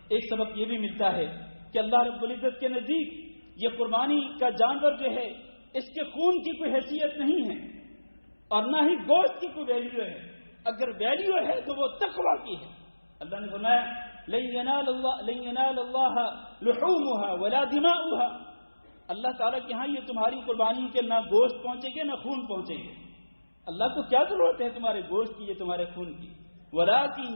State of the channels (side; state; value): both; inverted; correlation -1.00